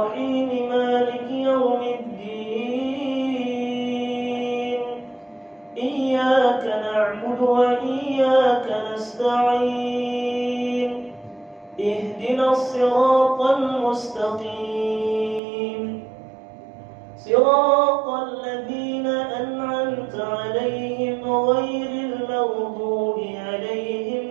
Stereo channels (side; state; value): left; drops out; at 15.4 s